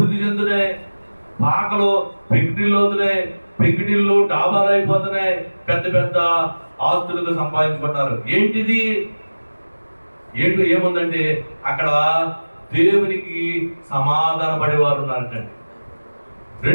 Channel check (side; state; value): both; inverted; correlation -1.00